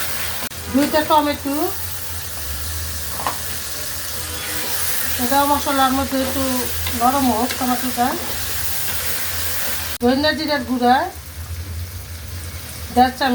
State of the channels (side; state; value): both; identical; correlation 1.00